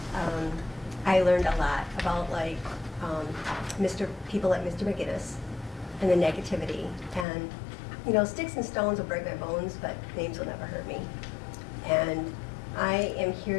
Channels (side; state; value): right; drops out; at 7.2 s